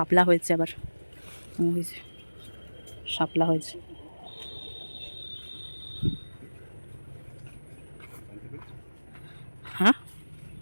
হয়েছে, আবার হয়েছে শাপলা হয়েছে। হ্যাঁ,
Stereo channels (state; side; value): inverted; both; correlation -1.00